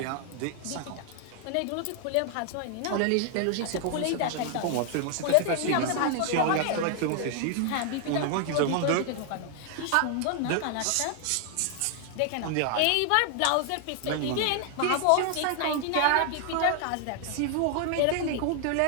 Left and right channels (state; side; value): different; both; correlation 0.00